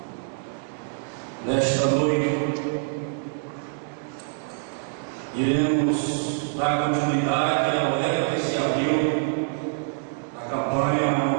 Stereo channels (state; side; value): silent; left; digital silence